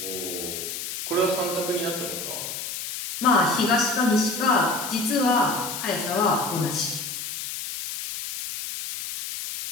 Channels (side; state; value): left; noise; hiss, 6 dB below the sound